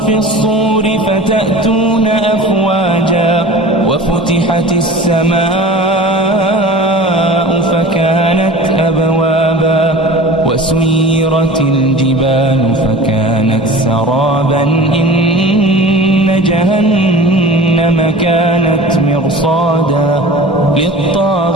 الصور فتأتون أفواجا وفتحت السماء فكانت أبوابا وسيرت الجبال فكانت سرابا إن جهنم كانت مرصادا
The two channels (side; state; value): both; normal; correlation 0.38